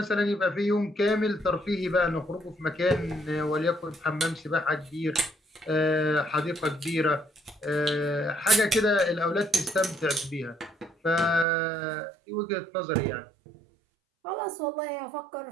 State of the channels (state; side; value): drops out; left; at 11.5 s